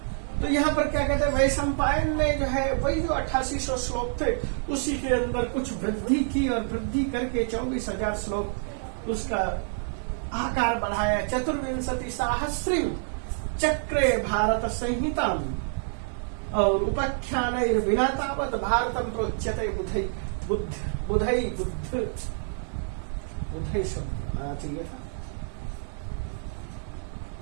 तो यहाँ पर क्या कहते हैं, वैशंपायन ने जो है वही जो 8800 श्लोक थे उसी के अंदर कुछ वृद्धि की और वृद्धि करके 24,000 श्लोक उसका आकार बढ़ाया। 24 सहस्रीम चक्रे भारत संहिता और उपाख्यान बिना तावत भारतम प्रोच्यते बुधई शब्द आना चाहिए था।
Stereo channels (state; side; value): silent; left; 60 dB below the other